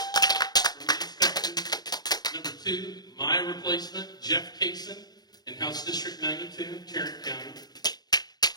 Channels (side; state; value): right; late; 0.19 ms